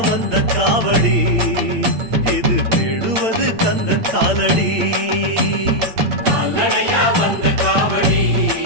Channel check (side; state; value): left; late; 8.8 ms